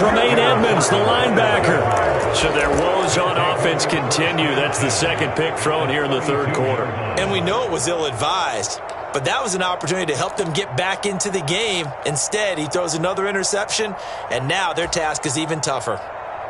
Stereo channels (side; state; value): both; identical; correlation 1.00